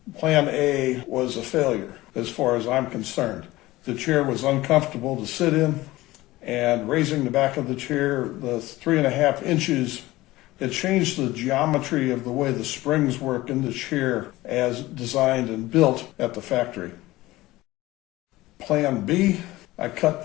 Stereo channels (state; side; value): quieter; right; 18.2 dB